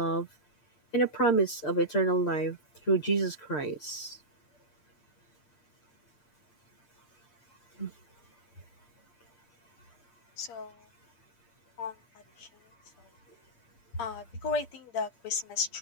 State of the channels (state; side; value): late; right; 8.6 ms